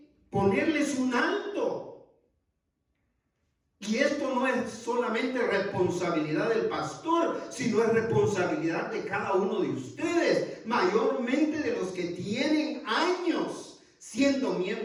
ponerles un alto. Y esto no es solamente responsabilidad del pastor, sino es responsabilidad de cada uno de ustedes, mayormente de los que tienen años siendo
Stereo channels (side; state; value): both; identical; correlation 1.00